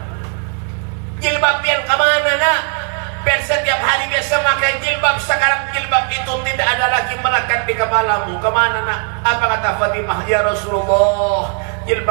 Jilbab yang kemana nak? Biar setiap hari biasa pakai jilbab, sekarang jilbab itu tidak ada lagi melekat di kepalamu. Kemana nak? Apa kata Fatimah? Ya Rasulullah,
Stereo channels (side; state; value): left; quieter; 40.0 dB